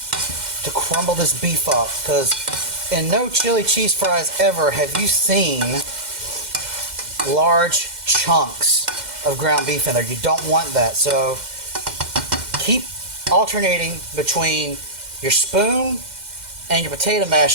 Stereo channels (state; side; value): late; left; 2.1 ms